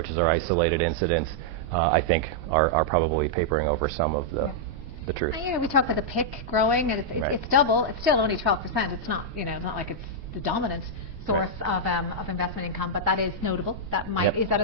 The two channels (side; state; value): left; late; 8.5 ms